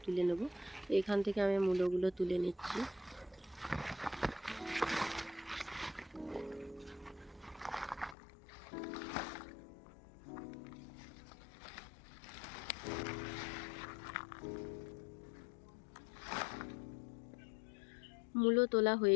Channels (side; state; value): right; drops out; at 8.2 s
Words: তুলে নেব। তো এখান থেকে আমি মূলোগুলো তুলে নিচ্ছি। মূলো তোলা